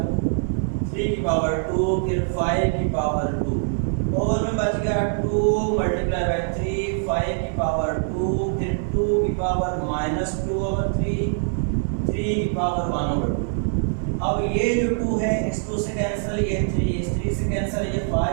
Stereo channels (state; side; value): silent; left; 63 dB below the other